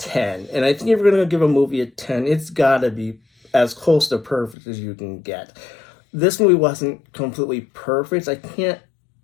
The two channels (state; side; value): drops out; right; at 4.5 s